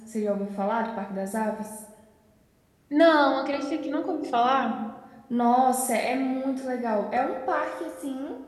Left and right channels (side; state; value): both; identical; correlation 1.00